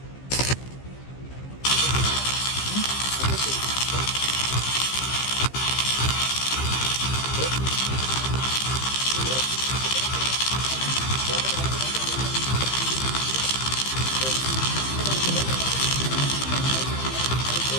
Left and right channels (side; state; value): right; late; 15 ms